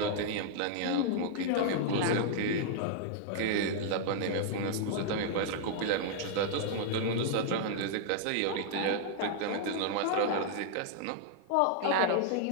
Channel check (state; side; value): different; both; correlation -0.01